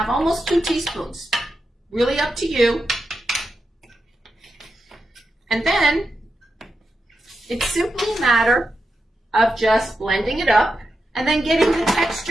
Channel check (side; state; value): both; normal; correlation 0.87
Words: almost 2 teaspoons. Really up to you. And then it's simply a matter of just blending it up and then getting the